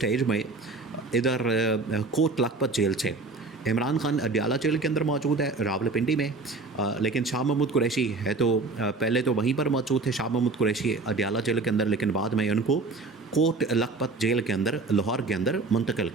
में इधर कोट लखपत जेल से, इमरान खान अडियाला जेल के अंदर मौजूद है रावलपिंडी में, लेकिन शाह महमूद कुरैशी है तो पहले तो वहीं पर मौजूद थे शाह महमूद कुरैशी अडियाला जेल के अंदर, लेकिन बाद में उनको कोट लखपत जेल के अंदर, लाहौर के अंदर मुंतकिल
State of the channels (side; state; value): left; quieter; 3.6 dB